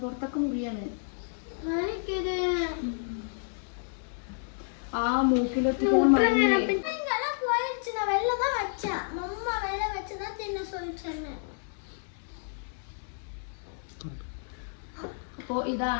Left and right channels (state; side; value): silent; right; digital silence